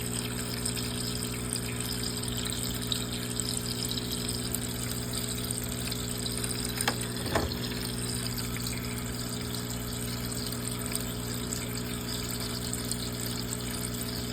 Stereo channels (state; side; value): identical; both; correlation 1.00